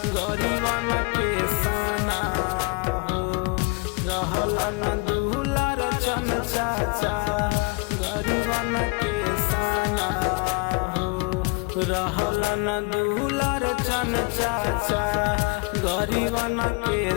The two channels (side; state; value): right; quieter; 30.6 dB